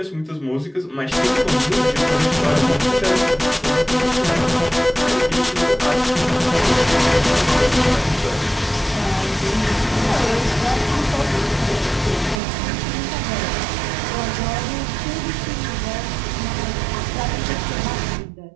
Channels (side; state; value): left; drops out; at 12.4 s